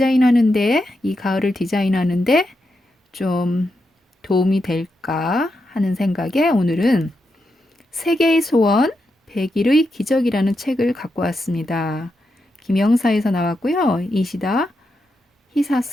이 가을을 디자인하는데 좀 도움이 될까 하는 생각에 오늘은 세계의 소원 100일의 기적이라는 책을 갖고 왔습니다. 김영사에서 나왔고요. 이시다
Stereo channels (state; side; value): normal; both; correlation 0.85